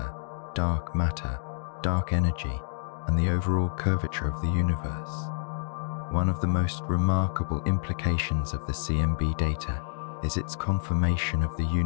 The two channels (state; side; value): silent; right; digital silence